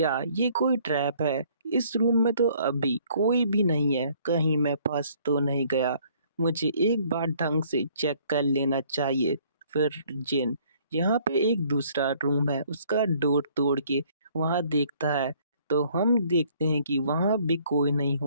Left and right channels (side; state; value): both; inverted; correlation -0.61